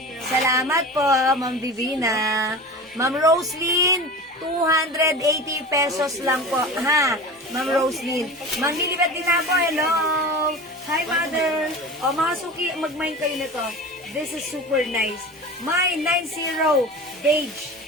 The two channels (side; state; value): both; normal; correlation 0.33